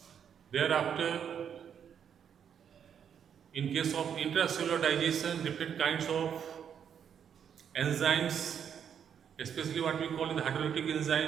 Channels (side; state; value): left; quieter; 8.2 dB